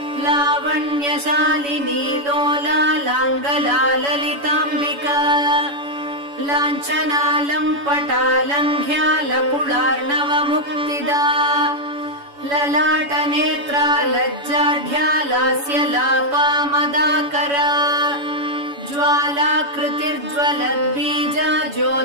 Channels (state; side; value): late; left; 7.0 ms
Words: लावण्यशालिनी लोला लाङ्गला ललिताम्बिका लाञ्छना लम्पटा लङ्घ्या लकुलार्णवमुक्तिदा ललाटनेत्रा लज्जाढ्या लास्य लापा मदाकरा ज्वालाकृतिर्ज्वलद्बीजा